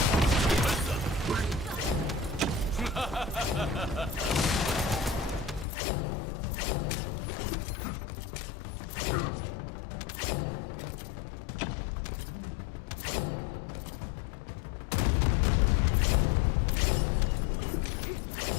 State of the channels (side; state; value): right; drops out; at 5.7 s